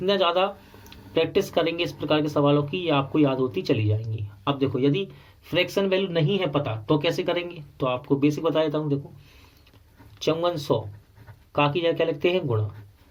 ज्यादा प्रैक्टिस करेंगे इस प्रकार के सवालों की, ये आपको याद होती चली जाएंगी। अब देखो यदि फ्रैक्शन वैल्यू नहीं है पता तो कैसे करेंगे, तो आपको बेसिक बता देता हूँ। देखो 5400 का की जगह क्या लिखते हैं, गुणा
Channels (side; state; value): both; identical; correlation 1.00